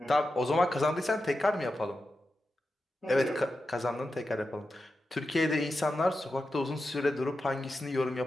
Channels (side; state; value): both; normal; correlation 0.90